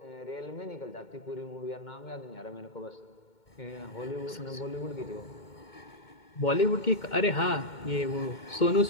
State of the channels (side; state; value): right; late; 2.2 ms